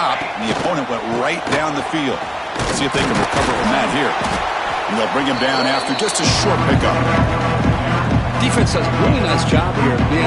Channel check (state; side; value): identical; both; correlation 1.00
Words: and the opponent went right down the field. Let's see if they can recover from that here. And they'll bring him down after just a short pickup. Defense does a really nice job here of